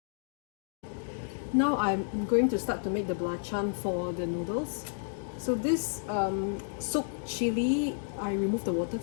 I'm going to start to make the belacan for the noodles. So this soaked chili, I remove the water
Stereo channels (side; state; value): right; silent; digital silence